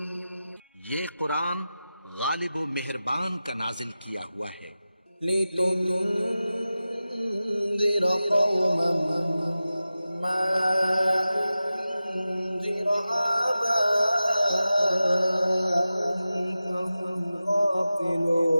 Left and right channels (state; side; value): inverted; both; correlation -0.94